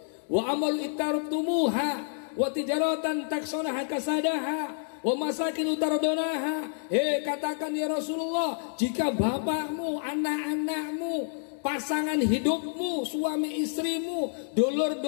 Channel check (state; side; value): silent; right; digital silence